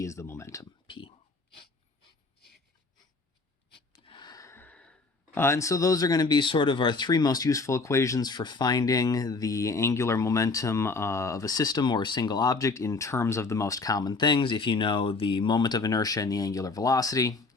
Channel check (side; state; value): right; quieter; 3.9 dB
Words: is the momentum, p. And so those are going to be sort of our three most useful equations for finding the angular momentum of a system or a single object in terms of the most common things. If you know the moment of inertia and the angular velocity,